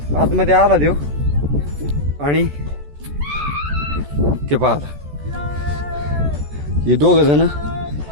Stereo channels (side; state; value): left; late; 14 ms